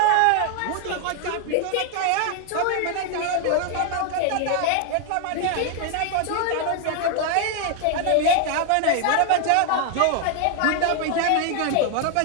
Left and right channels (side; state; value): both; different; correlation 0.00